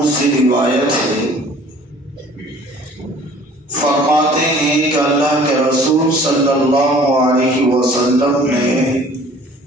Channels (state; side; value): normal; both; correlation 0.51